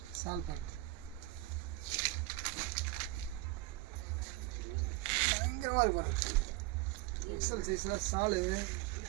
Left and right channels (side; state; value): left; quieter; 18.6 dB